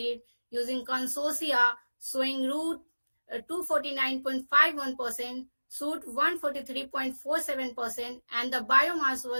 using consortia showing root 249.51%, shoot 143.47%, and the biomass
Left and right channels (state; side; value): inverted; both; correlation -1.00